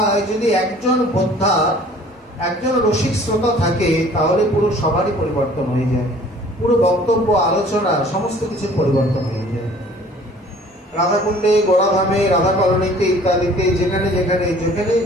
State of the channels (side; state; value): both; normal; correlation 0.51